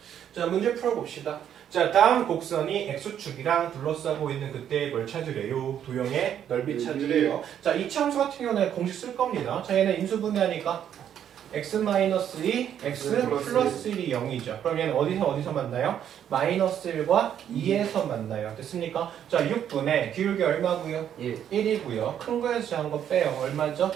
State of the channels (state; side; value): quieter; left; 9.6 dB